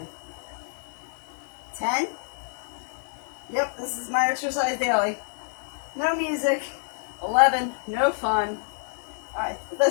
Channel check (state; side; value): silent; right; digital silence